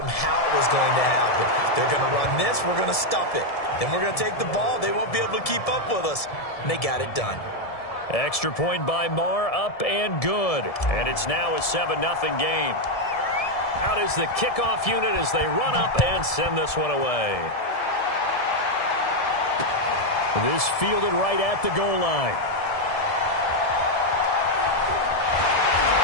how it was going to happen. They're going to run this. We're going to stop it. Then we're going to take the ball. They won't be able to keep up with us. And they got it done. Extra point by Marr, up and good. And it's now a 7-0 game. Out is the kickoff unit as they run up and send this one away. This fielded right at the goal line.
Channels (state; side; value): late; right; 1.7 ms